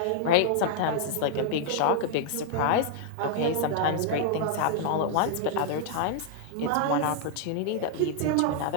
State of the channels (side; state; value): both; different; correlation -0.01